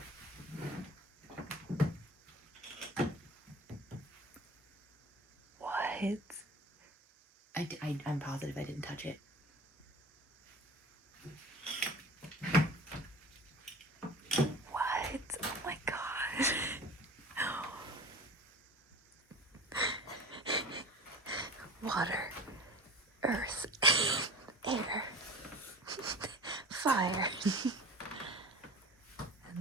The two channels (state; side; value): normal; both; correlation 0.39